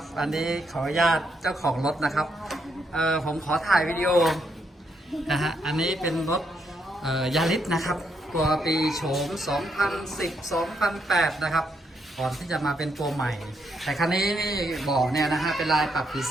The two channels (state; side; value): normal; both; correlation 0.77